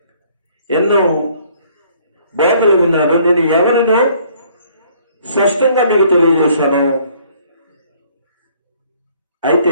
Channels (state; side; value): inverted; both; correlation -0.61